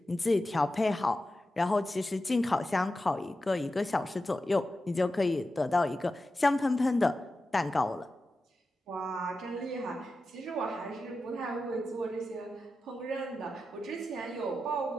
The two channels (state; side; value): normal; both; correlation 0.92